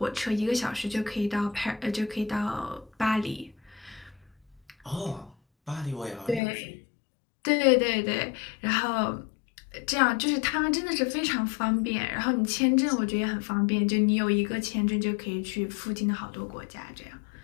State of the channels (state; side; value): drops out; right; at 6.4 s